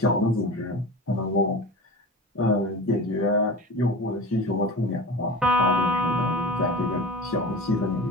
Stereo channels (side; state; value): both; normal; correlation 0.32